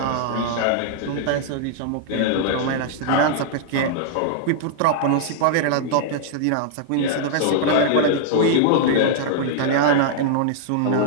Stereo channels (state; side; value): different; both; correlation -0.01